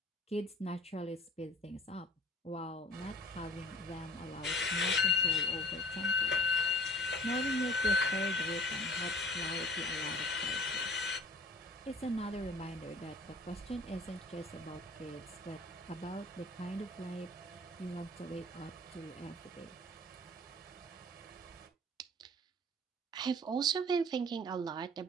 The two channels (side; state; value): both; normal; correlation 0.47